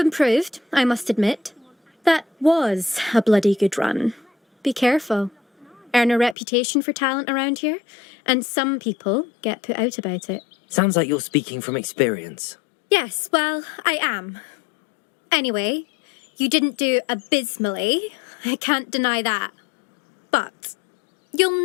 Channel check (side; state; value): right; drops out; at 6.4 s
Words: I must admit. That was a bloody good run. Be careful. Earn a reputation for talent around here, and some people get put out about it. Sounds like you're speaking from experience. Yes, well, I am. Anyway, you didn't do abysmally. I can't deny that. But